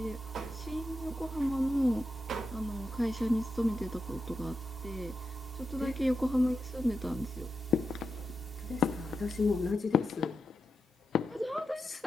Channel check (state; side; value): normal; both; correlation 0.87